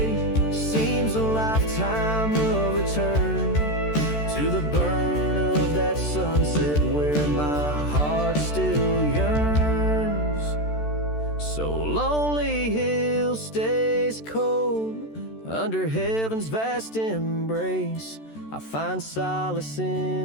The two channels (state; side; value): late; right; 14 ms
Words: seems a lifetime of return to the burn of that sunset where my heart still yearns. So Lonely Hill stays cold under heaven's vast embrace. I find solace